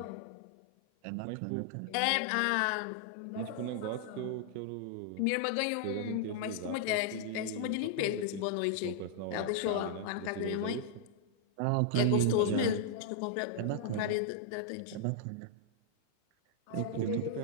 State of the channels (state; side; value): different; both; correlation -0.01